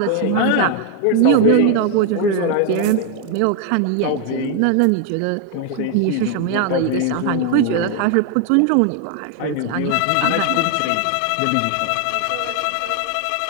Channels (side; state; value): both; different; correlation 0.01